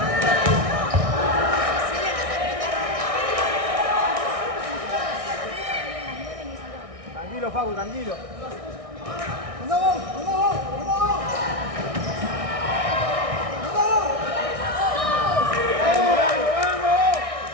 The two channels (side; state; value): left; late; 1.6 ms